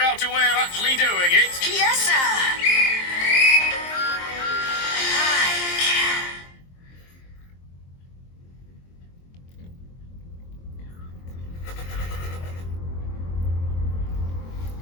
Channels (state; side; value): late; right; 23 ms